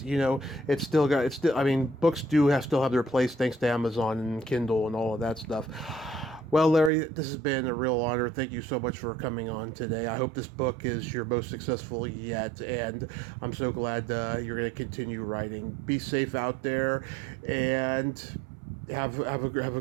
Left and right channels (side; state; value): left; drops out; at 6.9 s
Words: books still have their place thanks to Amazon and Kindle and all of that stuff. Well, Larry, this has been a real honor. Thank you so much for coming on today. I hope this book is your most successful yet, and I'm so glad you're going to continue writing. Be safe out there, and have a